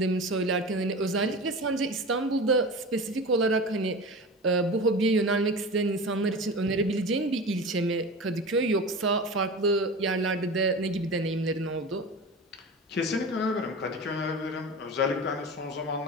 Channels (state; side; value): normal; both; correlation 0.31